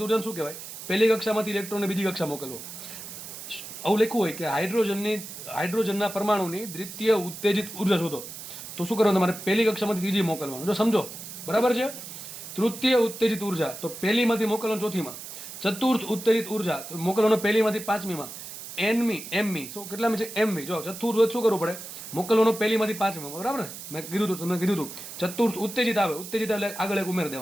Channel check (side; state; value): right; noise; hiss, 11 dB below the sound